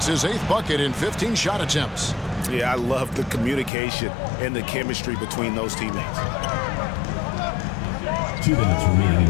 his 8th bucket in 15 shot attempts. Yeah, I love the communication and the chemistry between those teammates. 2 minutes remaining in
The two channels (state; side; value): drops out; right; at 3.7 s